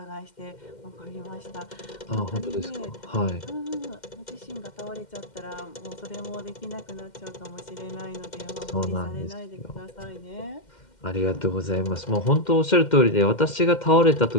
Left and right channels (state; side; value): late; right; 2.1 ms